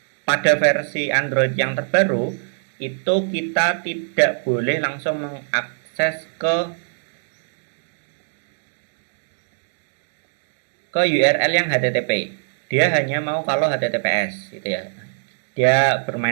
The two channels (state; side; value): silent; left; digital silence